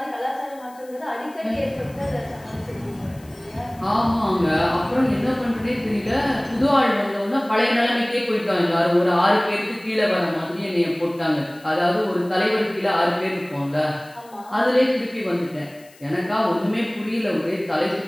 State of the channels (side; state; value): left; noise; hiss, 26 dB below the sound